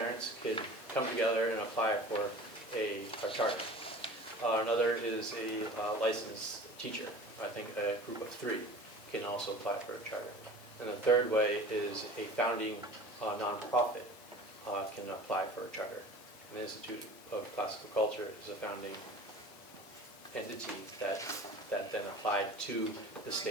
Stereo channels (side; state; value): both; normal; correlation 0.40